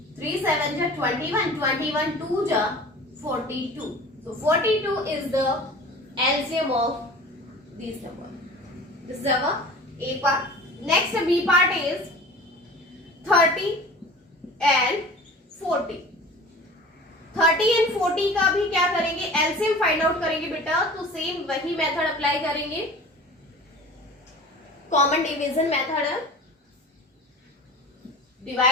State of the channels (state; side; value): normal; both; correlation 0.40